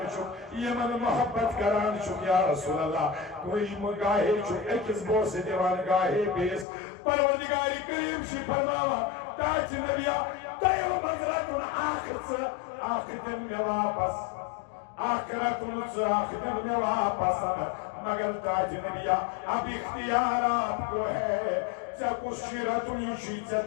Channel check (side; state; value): right; drops out; at 6.7 s